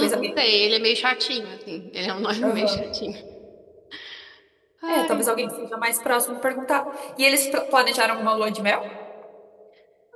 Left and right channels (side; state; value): both; identical; correlation 1.00